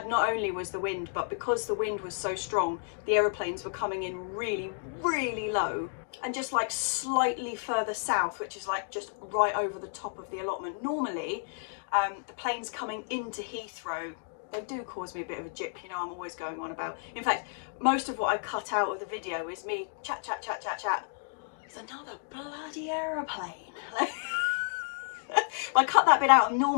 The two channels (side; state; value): right; silent; digital silence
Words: not only was the wind, but because the wind was so strong, the aeroplanes were coming in really, really low and just like slightly further south, which is like just right over the top of the allotment. Normally, the planes coming into Heathrow, they do cause me a bit of a jip, you know, I'm always going on about. In fact, most of what I cut out of the video is me chat. It's another bloody aeroplane. I cut that bit out, and